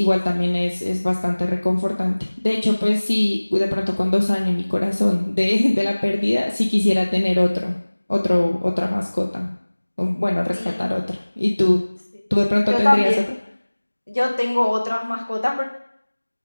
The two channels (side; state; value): both; inverted; correlation -1.00